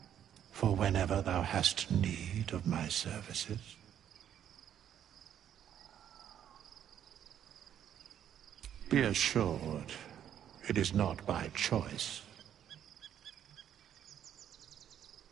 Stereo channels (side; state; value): left; quieter; 9.9 dB